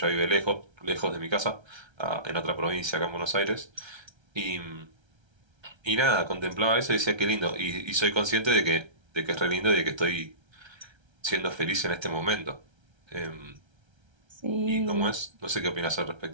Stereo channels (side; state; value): left; late; 1.3 ms